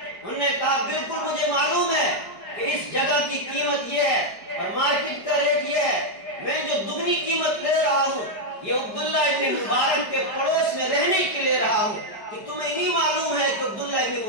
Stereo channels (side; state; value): right; late; 5.3 ms